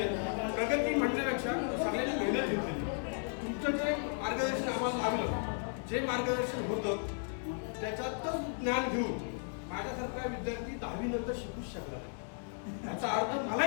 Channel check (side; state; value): right; silent; 54 dB below the other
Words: आहे. प्रगती म्हणण्यापेक्षा सगळ्यांनी मेहनत घेतली. तुमचं जे मार्गदर्शन आम्हाला लागलं, जे मार्गदर्शन होतं त्याच्यातच ज्ञान घेऊन माझ्यासारखा विद्यार्थी 10वी नंतर शिकूच शकला. याचा अर्थ